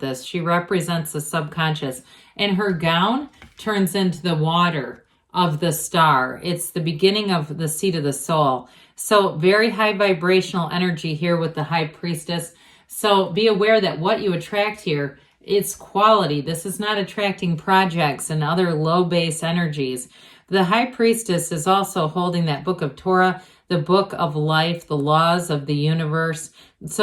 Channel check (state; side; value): identical; both; correlation 1.00